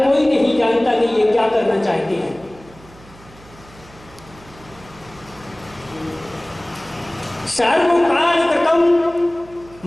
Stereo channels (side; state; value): right; noise; hum, 23 dB below the sound